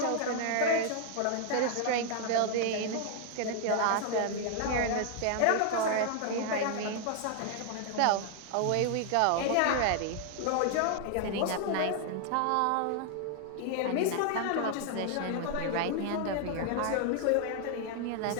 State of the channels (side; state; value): both; different; correlation 0.00